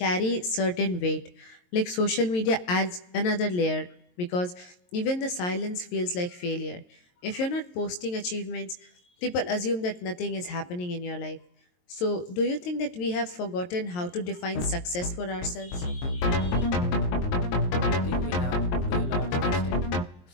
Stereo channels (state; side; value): late; right; 22 ms